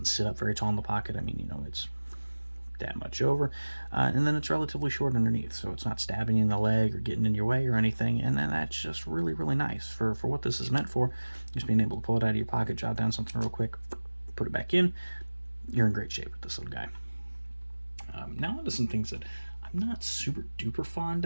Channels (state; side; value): inverted; both; correlation -1.00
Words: sit up very tall in the pocket. I mean, you know, it's that much over, and then it's relatively short underneath, so it's not stabbing you in the leg or getting in your way or anything, and then that's just really nice for what this is meant for. Just being able to pull it out of your pocket, jot down something real quick, put it back in. You're in great shape with this little guy. Now onto some things that I'm not super duper fond